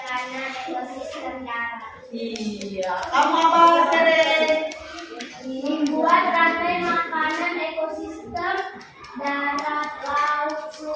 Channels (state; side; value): identical; both; correlation 1.00